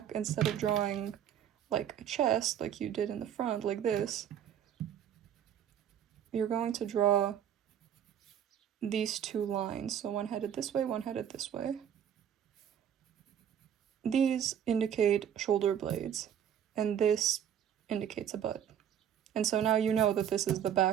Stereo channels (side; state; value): left; quieter; 9.4 dB